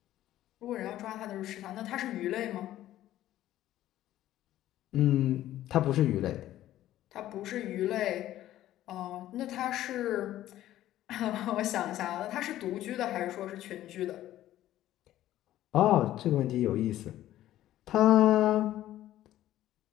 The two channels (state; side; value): quieter; right; 13.6 dB